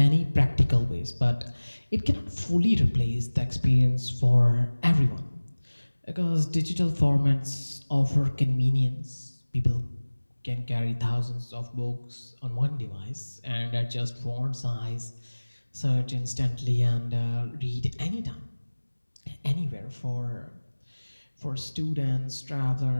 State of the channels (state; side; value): inverted; both; correlation -1.00